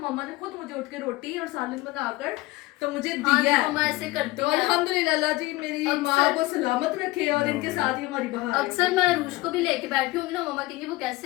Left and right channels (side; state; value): right; quieter; 20.2 dB